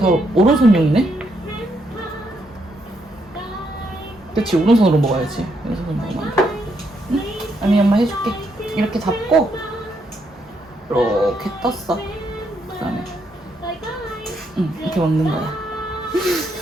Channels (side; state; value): both; normal; correlation 0.76